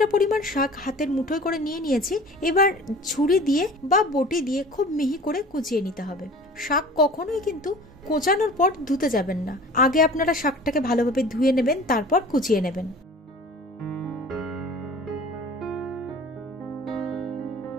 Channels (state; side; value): normal; both; correlation 0.43